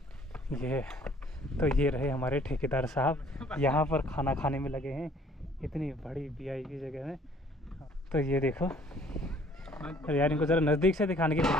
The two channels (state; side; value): normal; both; correlation 0.58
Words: ये रहे हमारे ठेकेदार साहब, यहाँ पर खाना खाने में लगे हैं, इतनी बड़ी VIP जगह में। तो ये देखो, और यार इनको ज़रा नज़दीक से दिखाने की